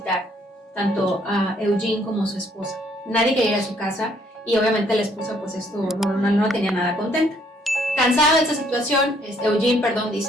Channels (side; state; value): both; normal; correlation 0.66